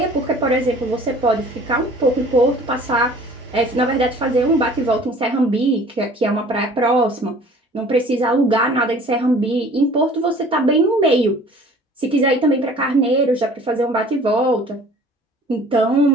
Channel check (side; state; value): both; normal; correlation 0.49